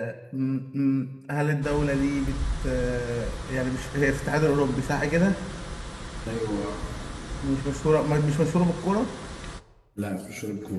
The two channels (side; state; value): both; identical; correlation 1.00